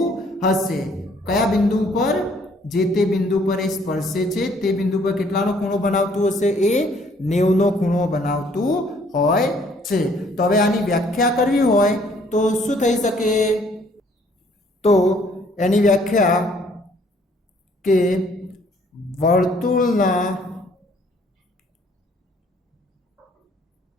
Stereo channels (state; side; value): normal; both; correlation 0.62